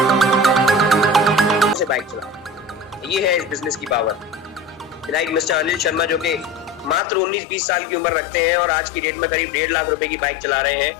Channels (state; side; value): drops out; right; at 7.0 s